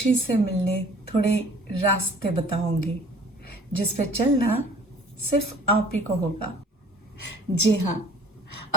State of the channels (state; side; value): normal; both; correlation 0.52